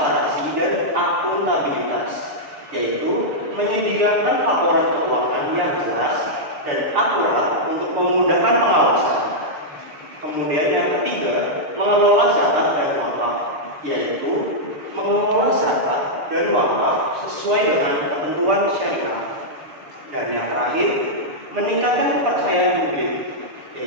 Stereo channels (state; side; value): late; left; 6.7 ms